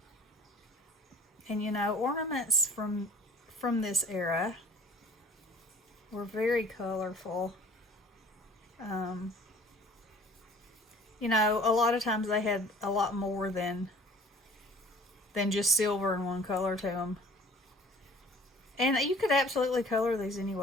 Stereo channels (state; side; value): normal; both; correlation 0.50